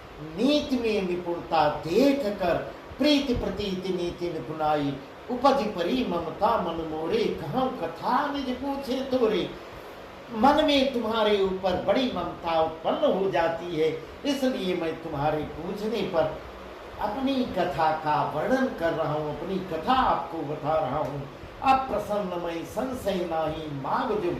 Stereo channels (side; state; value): both; identical; correlation 1.00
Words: नीति में निपुणता देख कर प्रीति प्रतीति नीति निपुणाई। उपज परी ममता मन मोरे, कहाँ कथा निज पूछे तोरे। मन में तुम्हारे ऊपर बड़ी ममता उत्पन्न हो जाती है, इसलिए मैं तुम्हारे पूछने पर अपनी कथा का वर्णन कर रहा हूँ, अपनी कथा आपको बता रहा हूँ। अब प्रसन्न मैं संशय नाही, माग जो